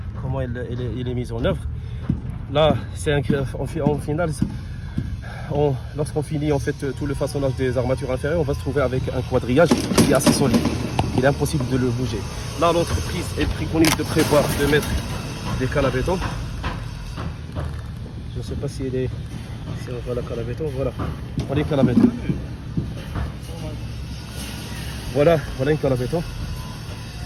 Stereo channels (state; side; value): identical; both; correlation 1.00